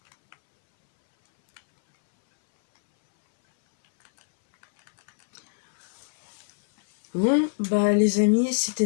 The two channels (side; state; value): right; silent; 63 dB below the other